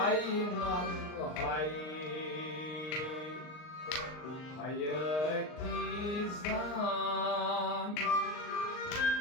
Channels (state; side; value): late; right; 39 ms